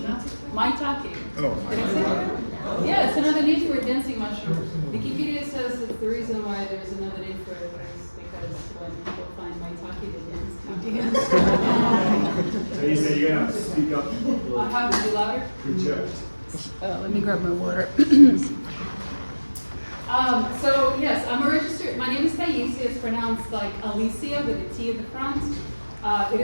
Maitake. Oh, Did I say that? Yeah, it's another name for a dancing mushroom. Wikipedia says that the reason why there's another name for it is because when people find maitake, they dance. So you say you're gonna have to speak up. I have to be louder. Project. Let me grab my water. So yes, I'm a registered. My name is Taisiya. It's pronounced like Alicia with a T at the front. It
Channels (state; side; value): inverted; both; correlation -1.00